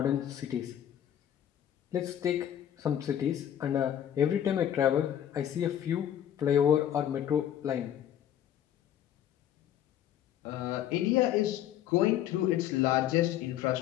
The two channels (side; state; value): right; quieter; 10.6 dB